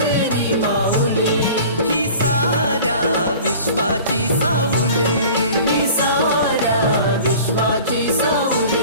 माऊली, ही साऱ्या विश्वाची सावली, ही साऱ्या विश्वाची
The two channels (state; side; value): inverted; both; correlation -0.43